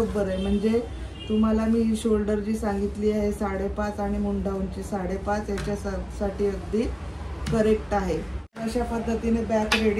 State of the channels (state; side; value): identical; both; correlation 1.00